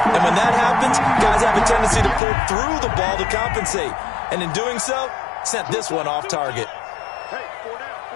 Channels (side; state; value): right; drops out; at 2.2 s